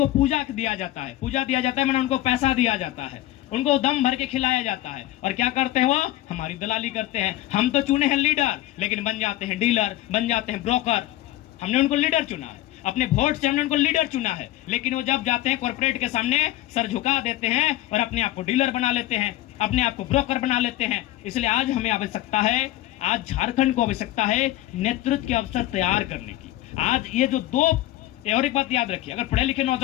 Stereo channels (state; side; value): quieter; right; 15.3 dB